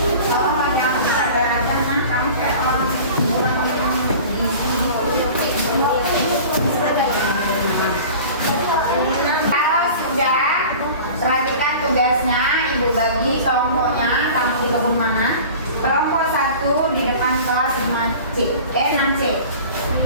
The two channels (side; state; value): both; inverted; correlation -0.40